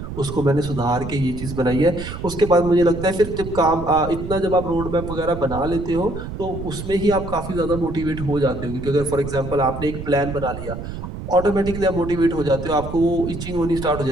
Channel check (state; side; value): noise; right; rumble, 8 dB below the sound